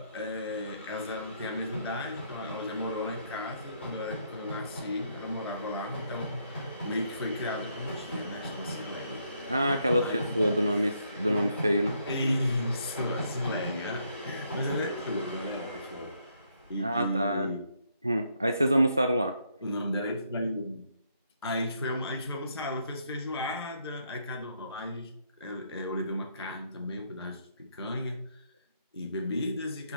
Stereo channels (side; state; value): both; inverted; correlation -0.74